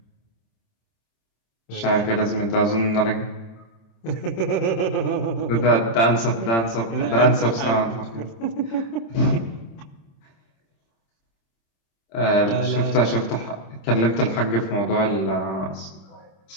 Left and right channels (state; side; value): late; right; 26 ms